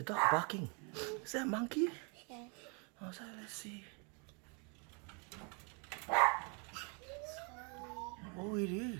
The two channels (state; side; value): quieter; left; 35.5 dB